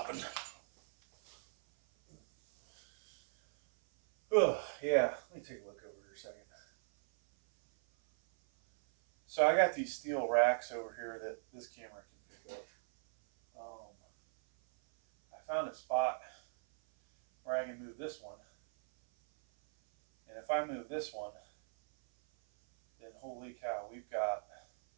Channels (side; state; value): left; silent; 52 dB below the other